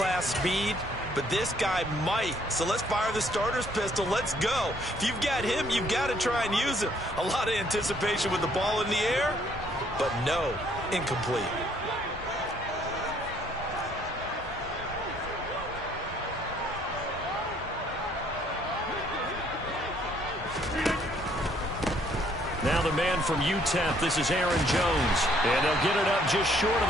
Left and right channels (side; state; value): both; normal; correlation 0.65